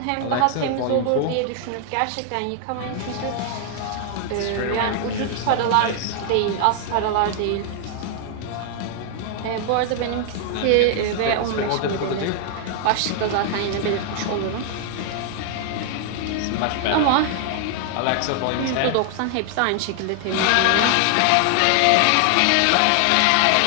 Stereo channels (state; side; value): different; both; correlation 0.00